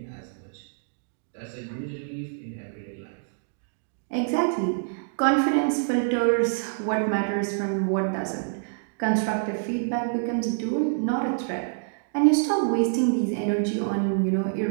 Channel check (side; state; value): left; silent; digital silence